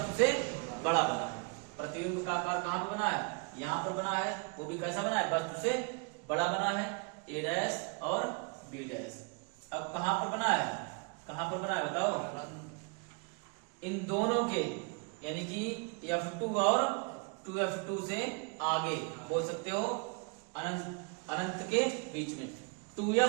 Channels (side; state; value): left; quieter; 34.5 dB